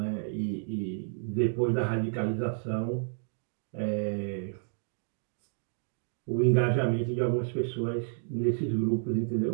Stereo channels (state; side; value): silent; left; digital silence